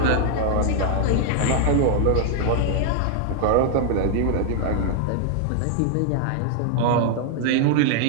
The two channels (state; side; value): different; both; correlation 0.00